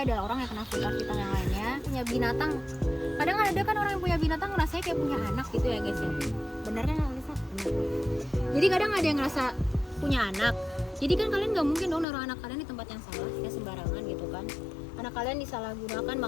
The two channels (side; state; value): right; drops out; at 12.1 s